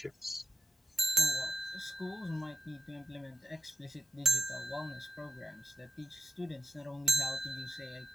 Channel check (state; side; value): normal; both; correlation 0.83